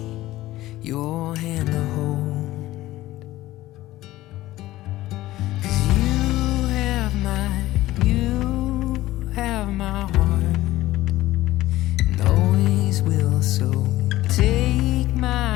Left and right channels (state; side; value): quieter; right; 16.3 dB